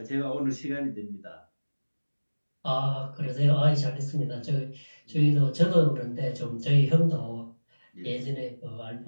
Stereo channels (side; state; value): both; inverted; correlation -1.00